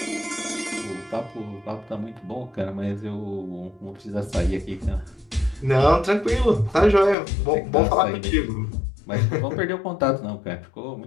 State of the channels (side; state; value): right; drops out; at 7.2 s